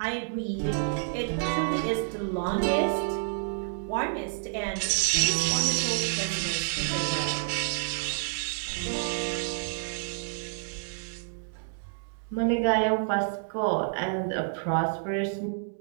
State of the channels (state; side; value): silent; left; digital silence